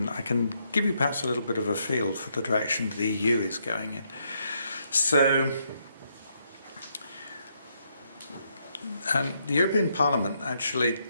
give you perhaps a little bit of a feel for the direction the EU is going in. So the European Parliament actually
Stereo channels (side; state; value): both; inverted; correlation -0.76